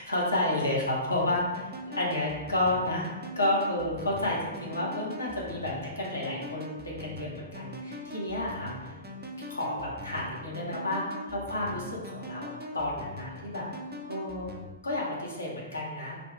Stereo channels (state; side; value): inverted; both; correlation -0.42